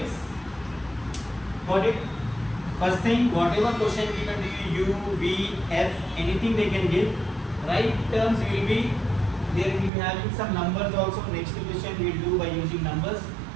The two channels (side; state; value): left; drops out; at 9.9 s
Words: Got it? First thing, whatever question we can do, u, v, f, anything they can give. Right terms will be, there will be having some numbers also. Next question we will do by using numbers.